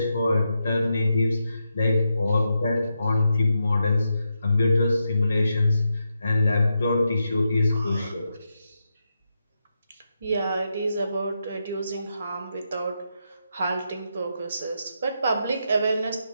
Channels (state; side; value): inverted; both; correlation -0.85